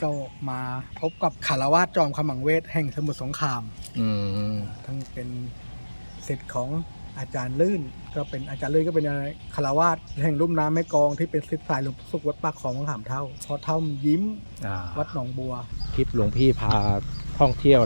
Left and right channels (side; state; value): both; inverted; correlation -1.00